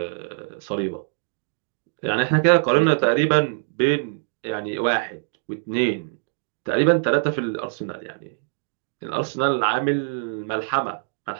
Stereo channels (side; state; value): left; silent; digital silence